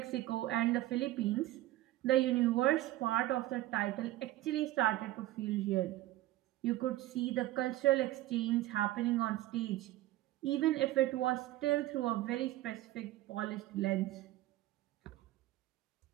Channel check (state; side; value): quieter; left; 15.9 dB